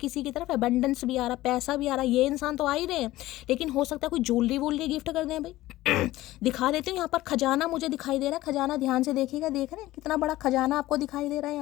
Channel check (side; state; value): right; quieter; 16.6 dB